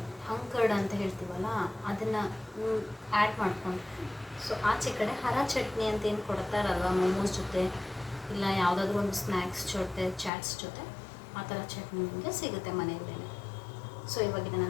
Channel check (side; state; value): right; drops out; at 10.3 s